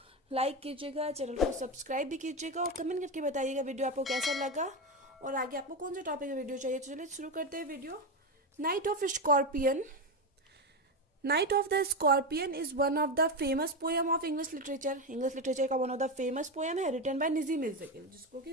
लाइक कीजिएगा, चैनल को सब्सक्राइब भी कीजिएगा और कमेंट करके बताइएगा वीडियो आपको कैसा लगा और आगे आपको कौन सा टॉपिक का वीडियो चाहिए। तो चलिए शुरू करते हैं video. Night of scorpion. Night of the scorpion is one of the famous poem of English literature. English literature का one of the famous poem है, रिटन बाय नजीम इज़्ज़कील, जिसको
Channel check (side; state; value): both; normal; correlation 0.13